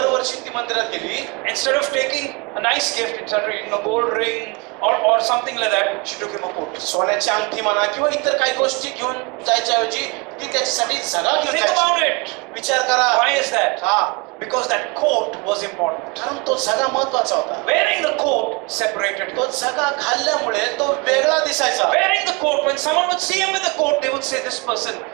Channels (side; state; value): left; quieter; 28.9 dB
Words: ती मंदिरात गेली. Instead of taking a nice gift, instead of gold ring or something like that, she took him a coat. सोन्याची अंगठी म्हणा किंवा इतर काही गोष्टी घेऊन जायच्या ऐवजी ती त्याच्यासाठी झगा घेऊन Think जायची. about it. विचार करा. Why is that? हा, Because that coat was important. कारण तो झगा महत्वाचा होता. Wearing the coat separated him. तो झगा घालल्यामुळे तो वेगळा दिसायचा. Wearing the coat, when someone would see him with the coat, they would say this person